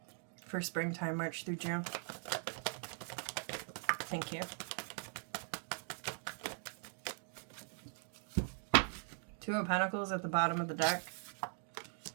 for springtime, March through June? Thank you. Two of Pentacles at the bottom of the deck.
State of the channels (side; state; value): left; silent; 51 dB below the other